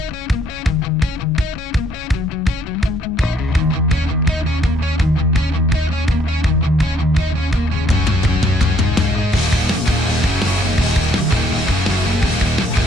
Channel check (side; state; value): both; normal; correlation 0.66